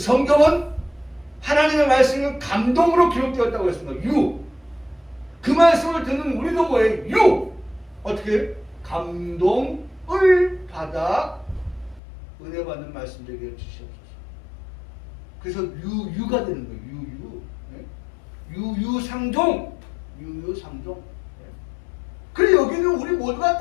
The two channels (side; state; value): right; drops out; at 12.0 s